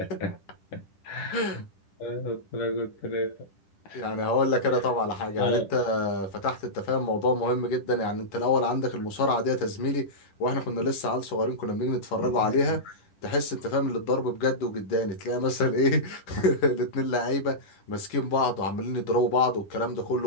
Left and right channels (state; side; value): late; right; 10 ms